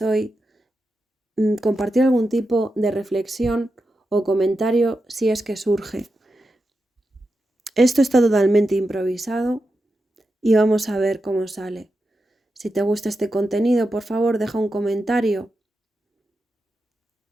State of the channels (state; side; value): normal; both; correlation 0.89